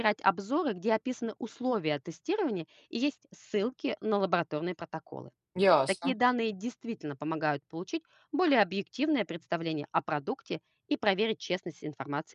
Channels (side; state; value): both; identical; correlation 1.00